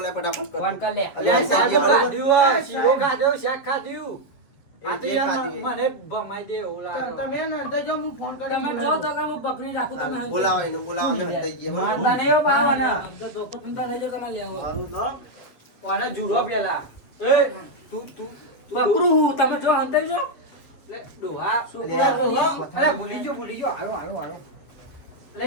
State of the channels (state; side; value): late; right; 7.5 ms